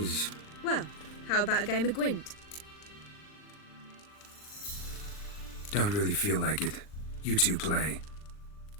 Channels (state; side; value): late; right; 39 ms